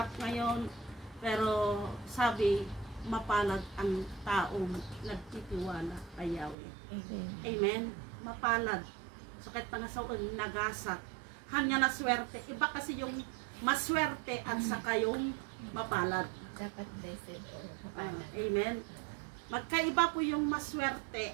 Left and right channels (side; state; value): left; drops out; at 6.6 s